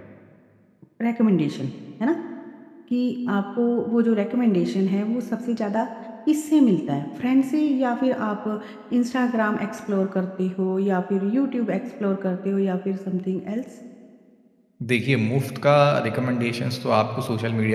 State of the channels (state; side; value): identical; both; correlation 1.00